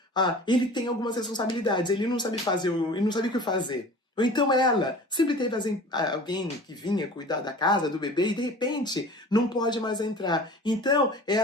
ele tem algumas responsabilidades, ele não sabe ele não sabe o que fazer. Ou então ela sempre teve alguém que vinha cuidar da casa, do bebê, e de repente não pode mais entrar. Então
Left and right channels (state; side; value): normal; both; correlation 0.41